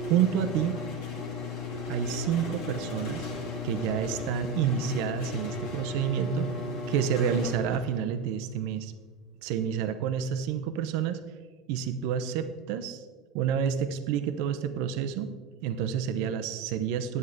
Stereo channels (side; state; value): left; quieter; 6.3 dB